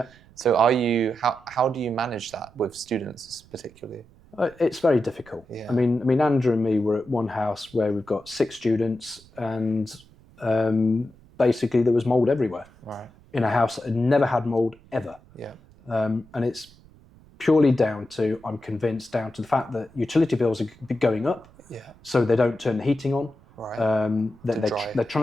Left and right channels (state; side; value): noise; right; rumble, 26 dB below the sound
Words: So how do you manage that with students particularly? It's very difficult. I mean, Andrew and me were at one house where we've got 6 students, and basically there was mould everywhere. Right. In a house that had never had mould ever. Yeah. And it's purely down to, I'm convinced, down to the fact that utility bills are going up. Yeah. So they don't turn the heating on. Right. They're